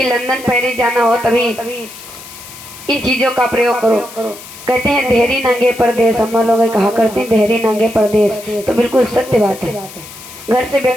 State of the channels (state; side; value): noise; left; hiss, 16 dB below the sound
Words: लंदन पेरिस जाना हो तभी इन चीजों का प्रयोग करो। कहते हैं देहरी नंगे परदेश, हम लोग कहा करते हैं देहरी नंगे परदेश, तो बिल्कुल सत्य बात है। घर से